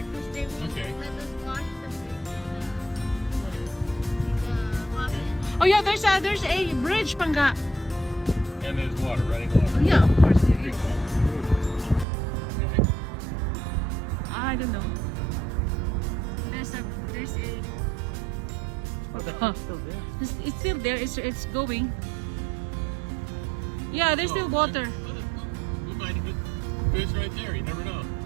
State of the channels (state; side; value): drops out; left; at 12.1 s